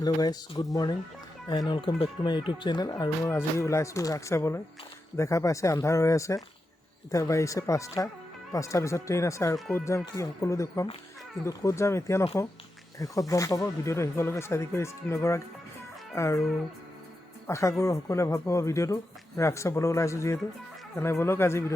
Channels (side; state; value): both; normal; correlation 0.89